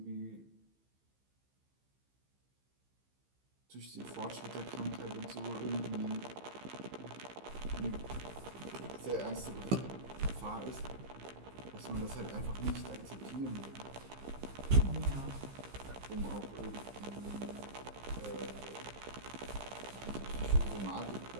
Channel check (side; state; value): left; late; 15 ms